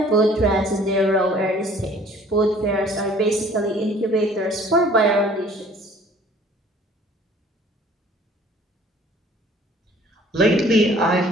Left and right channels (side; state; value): both; normal; correlation 0.53